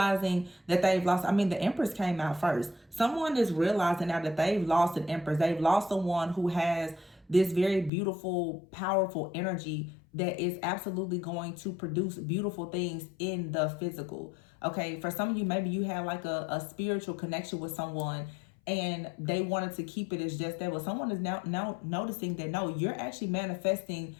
that they've lost. I mean, the Empress came out first. Someone is realizing now that they've lost an Empress. They've lost someone who has this very beautiful, powerful energy that is absolutely going to produce beautiful things in the physical. Okay, for some of you, maybe you had like a spiritual connection with someone, and they wanted to keep it as just that. But someone is now noticing that no, you're actually manifesting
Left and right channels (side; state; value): right; drops out; at 7.9 s